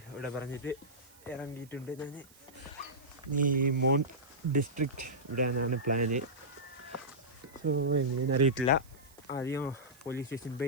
ഇവിടെ പറഞ്ഞിട്ട് ഇറങ്ങിയിട്ടുണ്ട് ഞാൻ. ഈ മോൺ ഡിസ്ട്രിക്റ്റ് ഇവിടെയാണ് പ്ലാന്. സോ എങ്ങനെയെന്ന് അറിയിട്ടില്ല. ആദ്യം പോലീസ് സ്റ്റേഷൻ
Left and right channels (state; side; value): noise; right; hiss, 25 dB below the sound